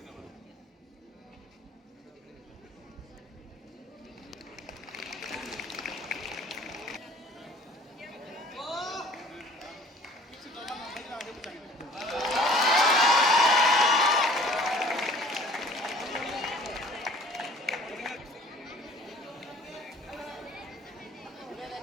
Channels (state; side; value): normal; both; correlation 0.52